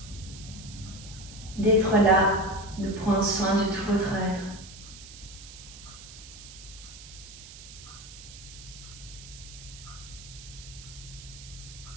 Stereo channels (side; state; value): right; noise; hiss, 15 dB below the sound